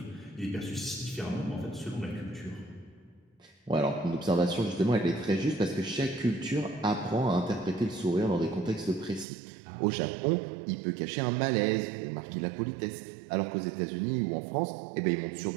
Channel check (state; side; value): drops out; left; at 9.2 s